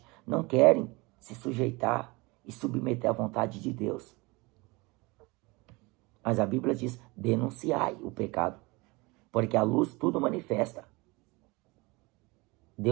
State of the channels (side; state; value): left; quieter; 24.7 dB